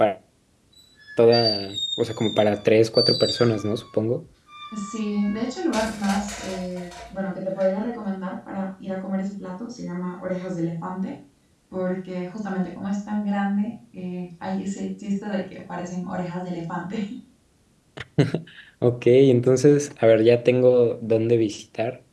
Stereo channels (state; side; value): identical; both; correlation 1.00